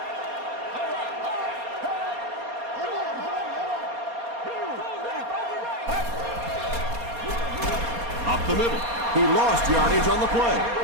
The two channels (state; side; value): late; left; 4.2 ms